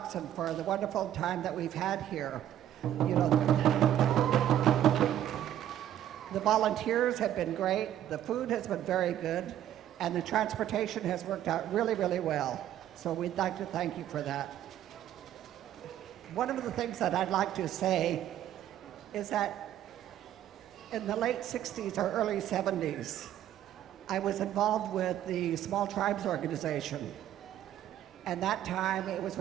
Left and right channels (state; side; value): quieter; left; 11.5 dB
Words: for the wonderful time that we've had here. You know, the volunteers have been great, the food has been very good, and the transportation has worked out really, really well. So we'd like to thank you for that. One of the things that I'd like to say is that in the late 60s or early 70s, I was involved with the Small Tribes Organization. And that time it was